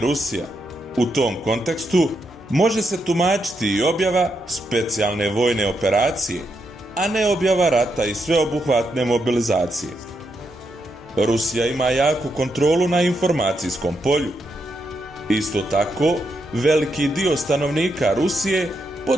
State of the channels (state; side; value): normal; both; correlation 0.81